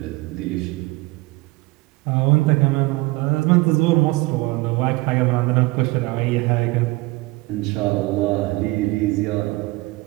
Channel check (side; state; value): left; quieter; 22.5 dB